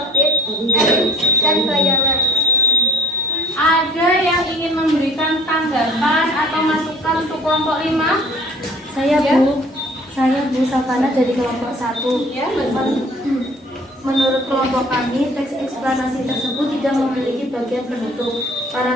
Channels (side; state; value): both; normal; correlation 0.49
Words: elips, dan bayangan. Ada yang ingin memberikan tanggapan atau masukan untuk kelompok 5? Saya Ya. Saya Bu Savana dari kelompok 1. Ya, betul. Menurut kelompok kami, teks eksplanasi tersebut tidak memiliki bagian penutup.